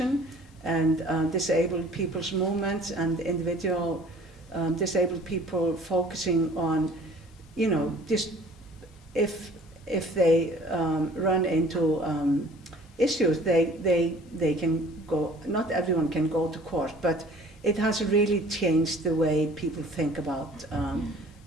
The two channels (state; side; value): normal; both; correlation 0.51